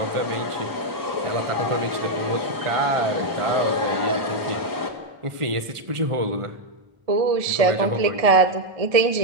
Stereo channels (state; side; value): late; left; 1.4 ms